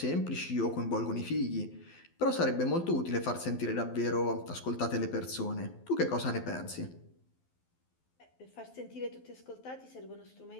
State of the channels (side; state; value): right; late; 12 ms